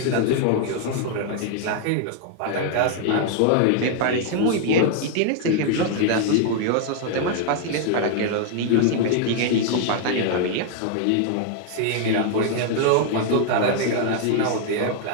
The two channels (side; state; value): both; different; correlation 0.00